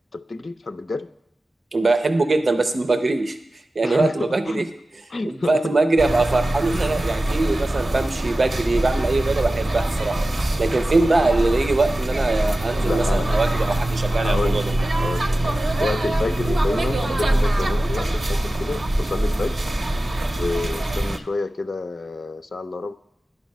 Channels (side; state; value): both; normal; correlation 0.95